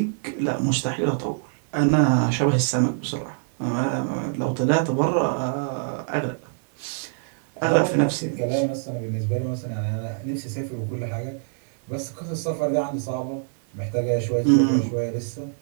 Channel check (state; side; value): silent; left; 62 dB below the other